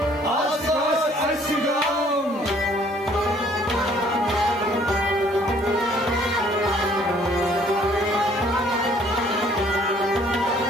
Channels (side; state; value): left; noise; hiss, 29 dB below the sound